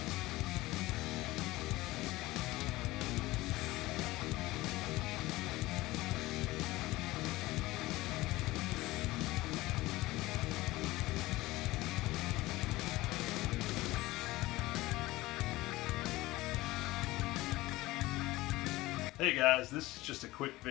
Hey guys, this is just a quick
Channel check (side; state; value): right; quieter; 19.0 dB